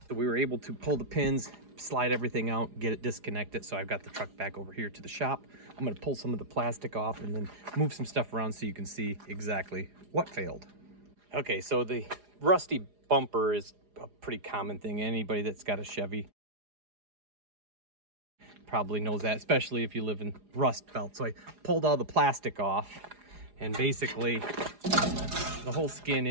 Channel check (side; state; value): left; late; 4.9 ms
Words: So we were able to pull the pins, slide everything out, get it disconnected. So I've got the truck back over here to the shop. I'm gonna pull some of the plastic off and then move some stuff around so you can see exactly what failed. Okay, so the rusty bumper is a pretty common thing. Anybody that's got a Chevy probably knows that, especially if you live in Rust Belt. So I pulled all the plastic off, and basically the whole skin